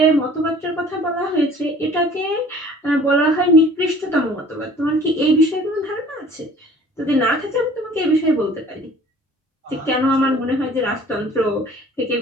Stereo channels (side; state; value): both; normal; correlation 0.50